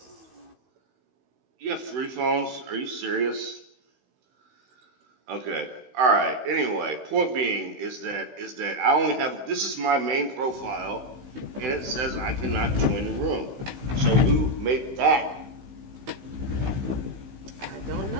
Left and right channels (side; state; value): left; late; 16 ms